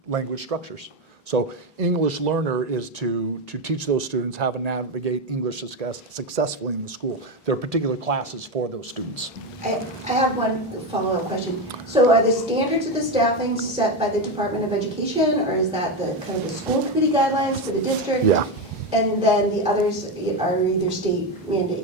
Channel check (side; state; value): both; normal; correlation 0.13